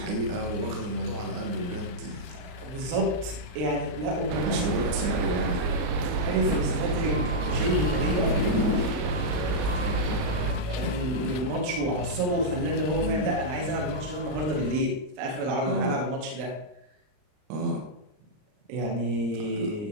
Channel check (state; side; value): late; left; 39 ms